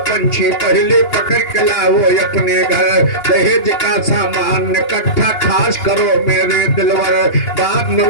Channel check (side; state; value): right; late; 2.8 ms